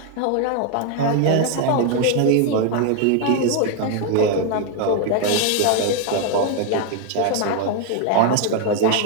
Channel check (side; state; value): both; different; correlation 0.00